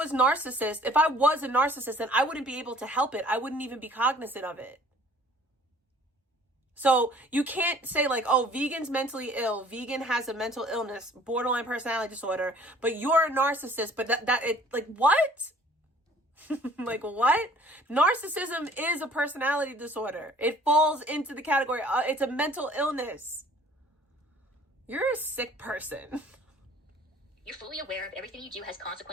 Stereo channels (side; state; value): both; normal; correlation 0.53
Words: a narcissist, then I wouldn't be able to help it. I wouldn't even be cognizant of it. So you can't say like, oh, Vegan's mentally ill. Vegan has a mental illness, borderline personality disorder, but you're a narcissist. But like, what? Like, what? Narcissism is a personality disorder. It falls into the category. It's a mental illness. You're a sick person. You're fully aware of everything you do has